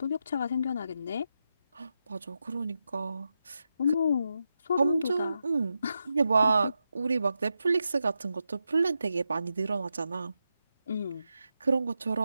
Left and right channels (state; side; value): inverted; both; correlation -0.87